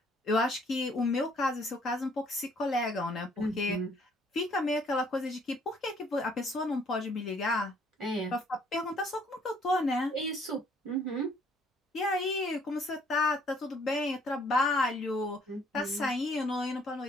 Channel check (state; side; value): normal; both; correlation 0.63